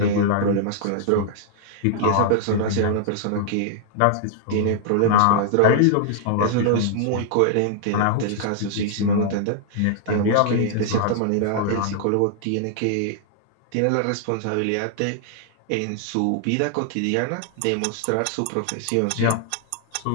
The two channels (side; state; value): both; different; correlation -0.01